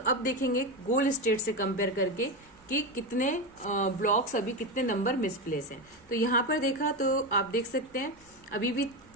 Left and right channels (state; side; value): noise; left; hum, 30 dB below the sound